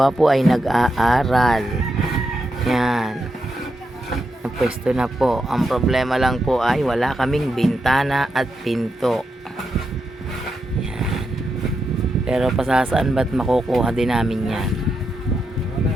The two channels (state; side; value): normal; both; correlation 0.85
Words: ay nag-aaral. Yan. Napwesto na po. Ang problema lang po ay wala kaming bintana at pinto. Yan. Pero pasasaan ba't makukuha din namin yan.